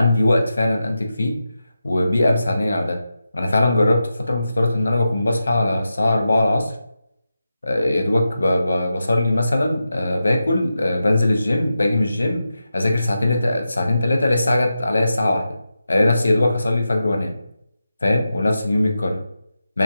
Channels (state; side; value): inverted; both; correlation -0.90